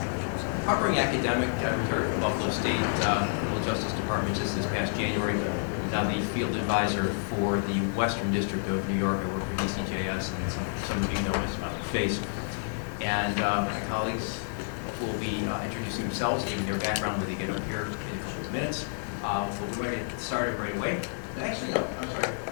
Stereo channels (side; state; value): right; silent; 57 dB below the other